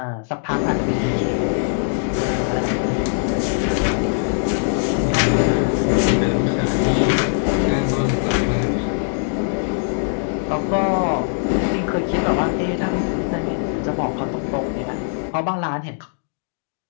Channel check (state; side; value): silent; right; digital silence